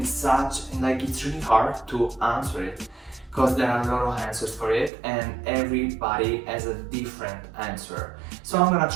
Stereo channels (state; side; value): drops out; left; at 4.9 s